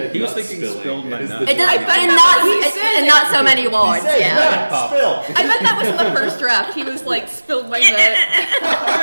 he was nut thinking spilling. spilled my It is nut. the- It does, but in not so many words. He said, Yeah. spill. I bet that was in the first draft. He was like, spilled my nut.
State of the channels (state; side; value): inverted; both; correlation -1.00